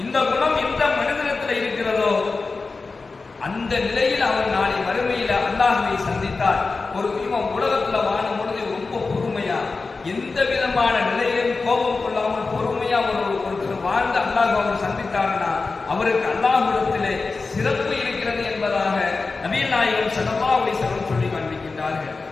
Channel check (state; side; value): quieter; right; 4.0 dB